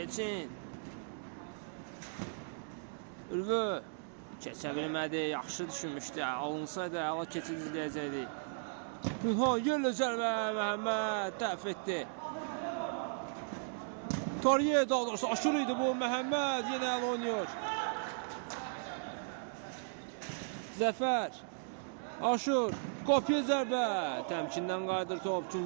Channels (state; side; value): silent; left; digital silence